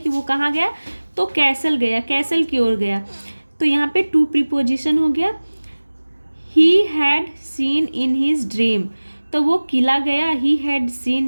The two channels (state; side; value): inverted; both; correlation -1.00